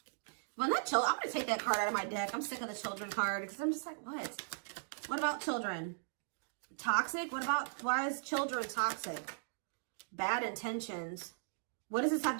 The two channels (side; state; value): left; silent; digital silence